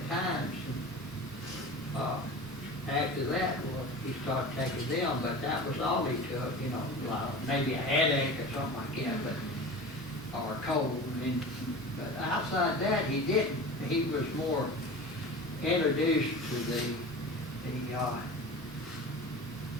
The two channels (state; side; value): normal; both; correlation 0.34